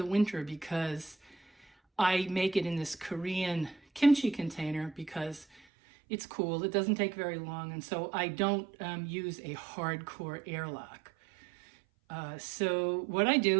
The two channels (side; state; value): left; drops out; at 5.6 s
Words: winter because I make it in this Korean kimchi container because it's cool. It doesn't take very long, and so I don't use a hardcore airlock. So what I